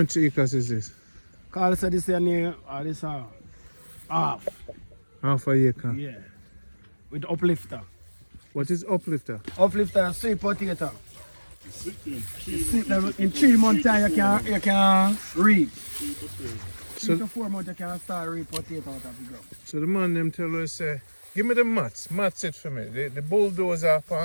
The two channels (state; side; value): inverted; both; correlation -1.00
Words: acres is this? Carl said this here near, this half. Half a acre. Yeah. With uplifter. What is uplifter? Uplifter is sweet potato. In 3 months time you can reap. 3 to 4 months you can start reap potato out of the ground. So the man them tell us give me the mats it for me. The bulldozer for